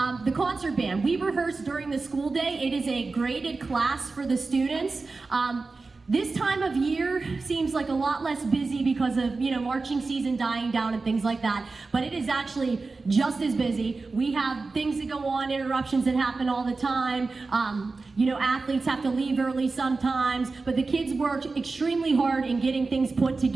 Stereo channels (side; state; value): left; quieter; 3.9 dB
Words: the concert band, we rehearse during the school day. It is a graded class for the students. This time of year seems like a lot less busy because of, marching season dying down and things like that, but it is actually just as busy. We have things that go on, interruptions that happen all the time. Athletes have to leave early sometimes, but the kids work extremely hard in getting things put